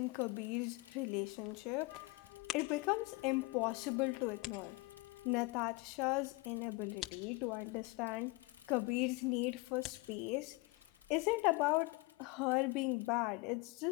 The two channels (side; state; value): right; quieter; 24.2 dB